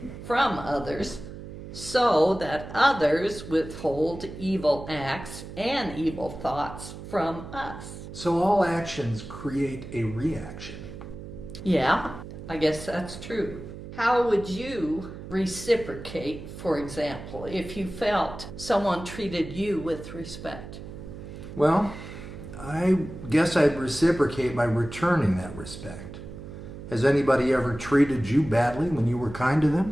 from others so that others withhold evil acts and evil thoughts from us. So all actions create a reaction. Yeah, I guess that's true. How would you reciprocate, for example, if you felt someone treated you with respect? Well, I guess I'd reciprocate by returning that respect. Has anybody ever treated you badly when you were kind to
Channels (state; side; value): noise; right; hum, 12 dB below the sound